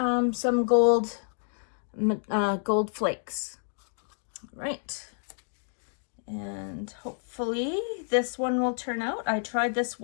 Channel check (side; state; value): right; silent; digital silence